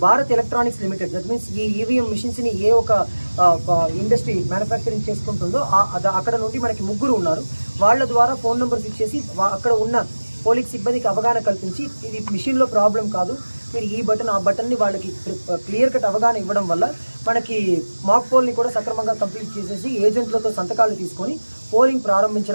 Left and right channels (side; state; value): both; inverted; correlation -1.00